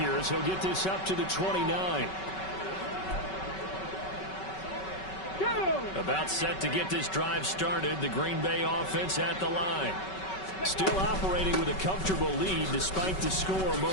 as he'll get this up to the 29. About set to get this drive started, the Green Bay offense at the line. Still operating with a comfortable lead despite the score a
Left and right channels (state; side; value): late; right; 5.3 ms